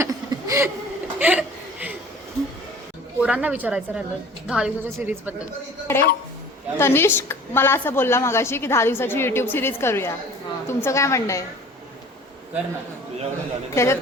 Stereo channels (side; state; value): both; normal; correlation 0.46